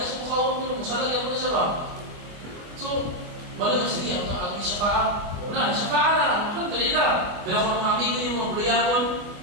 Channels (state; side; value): late; left; 24 ms